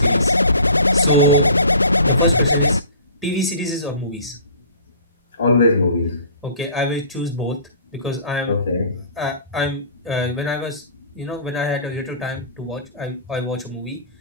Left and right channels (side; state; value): both; inverted; correlation -0.46